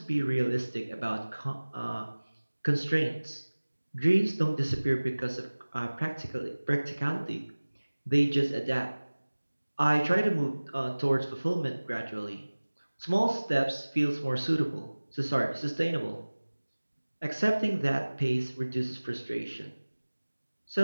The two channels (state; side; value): inverted; both; correlation -1.00